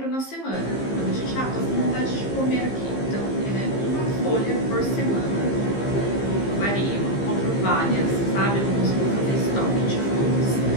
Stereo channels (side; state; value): right; late; 15 ms